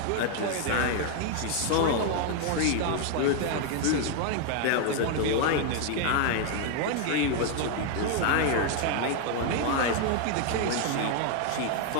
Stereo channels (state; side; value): different; both; correlation 0.00